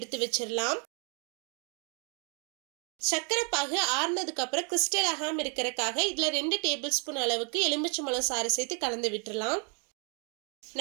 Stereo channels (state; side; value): quieter; left; 38.6 dB